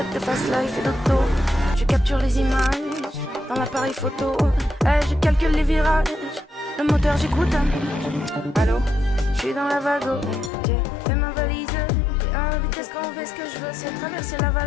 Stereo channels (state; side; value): drops out; right; at 10.5 s